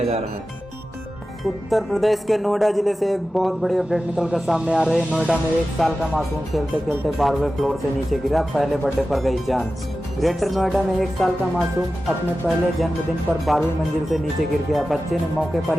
जा रहा है। उत्तर प्रदेश के नोएडा जिले से एक बहुत बड़ी अपडेट निकलकर सामने आ रही है। नोएडा में 1 साल का मासूम खेलते खेलते 12वें फ्लोर से नीचे गिरा। पहले बर्थडे पर गई जान। ग्रेटर नोएडा में 1 साल का मासूम अपने पहले जन्मदिन पर 12वीं मंजिल से नीचे गिर गया। बच्चे ने मौके पर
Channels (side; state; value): both; normal; correlation 0.94